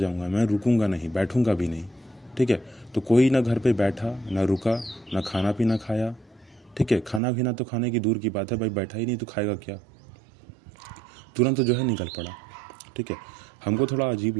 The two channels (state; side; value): drops out; left; at 7.2 s